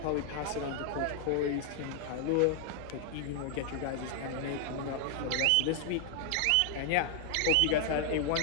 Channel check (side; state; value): both; different; correlation 0.00